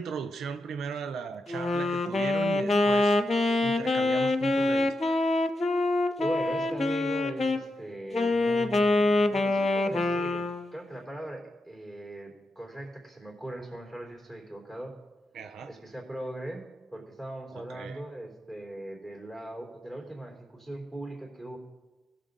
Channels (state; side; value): normal; both; correlation 0.86